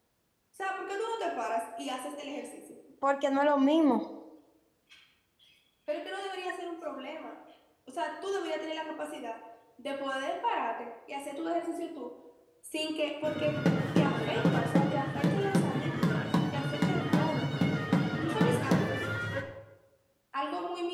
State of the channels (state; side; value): identical; both; correlation 1.00